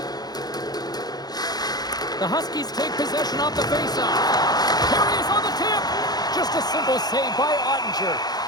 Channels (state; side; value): late; right; 0.19 ms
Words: The Huskies take possession off the faceoff. Here he is on the tip. Just a simple save by Ottinger.